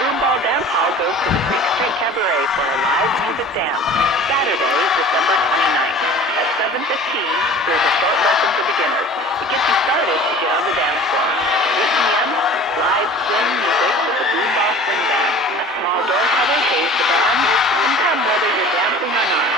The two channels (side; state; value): both; normal; correlation 0.43